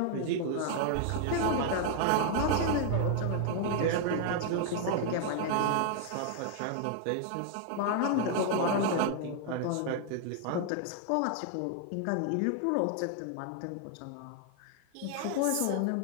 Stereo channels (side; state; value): both; different; correlation 0.00